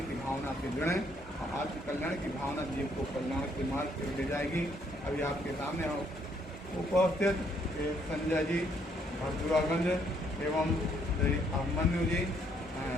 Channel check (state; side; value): normal; both; correlation 0.69